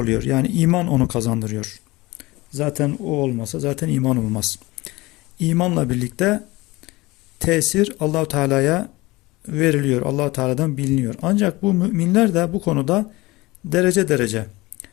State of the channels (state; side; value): quieter; right; 21.3 dB